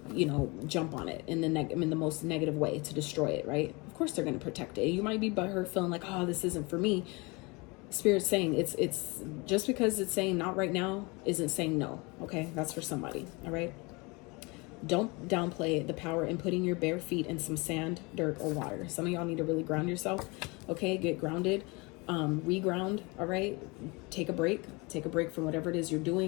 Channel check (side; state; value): right; quieter; 27.1 dB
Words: you know, jump on it in the most negative way to destroy it, right? Of course they're going to protect it. You might be butthurt feeling like, oh, this isn't for me. Spirit's saying it's just because it's saying not right now isn't saying no. Okay, that's for somebody. All right. Don't downplay the power in putting your bare feet in some sand, dirt, or water. Some of y'all need to really ground yourself. Okay, get grounded. Reground. All right, take a break from whatever it is you're